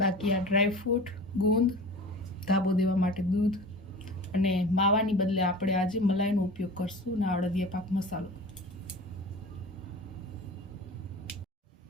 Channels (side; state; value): both; normal; correlation 0.36